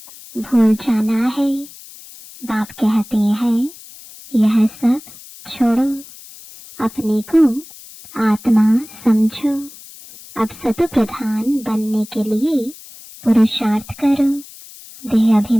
भूल जाना है। बाप कहते हैं यह सब छोड़ो, अपने को आत्मा समझो। अब सत प्रधान बनने के लिए पुरुषार्थ करो। देह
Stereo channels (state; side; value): noise; left; hiss, 19 dB below the sound